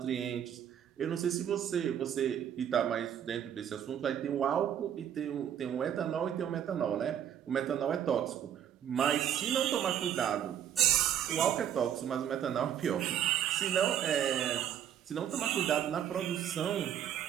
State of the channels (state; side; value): quieter; left; 9.7 dB